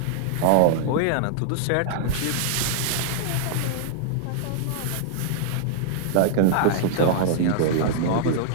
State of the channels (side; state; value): both; different; correlation -0.01